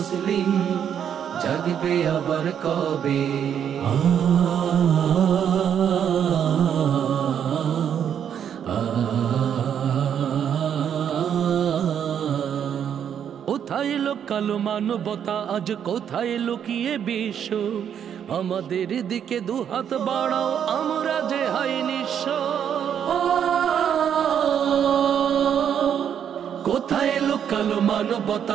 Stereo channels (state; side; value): quieter; left; 8.7 dB